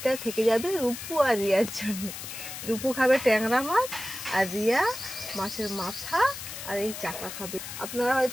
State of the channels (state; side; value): noise; left; hiss, 9 dB below the sound